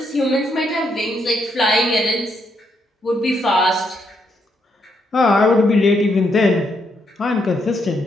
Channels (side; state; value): both; normal; correlation 0.77